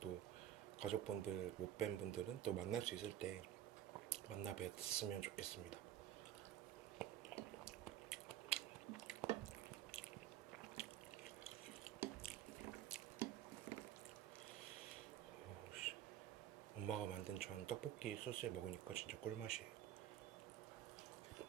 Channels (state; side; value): quieter; left; 11.6 dB